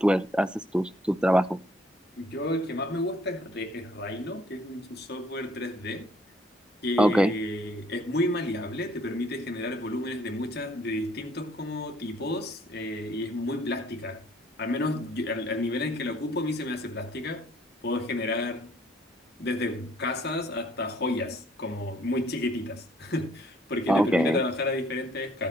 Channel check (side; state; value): both; normal; correlation 0.63